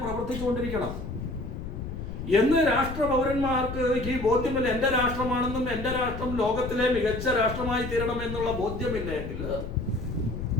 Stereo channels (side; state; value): left; noise; rumble, 7 dB below the sound